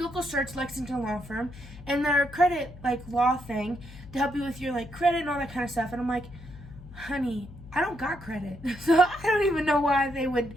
searched Lexington Law Firm, and they're a credit, law thing to help you with your, credit and all that kind of stuff. And I'm like, honey, I don't got credit. So I don't even know why they would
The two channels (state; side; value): noise; left; hum, 17 dB below the sound